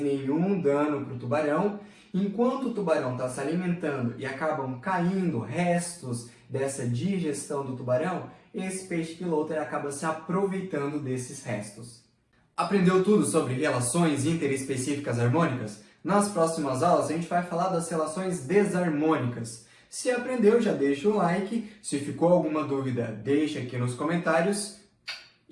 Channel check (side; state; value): both; identical; correlation 1.00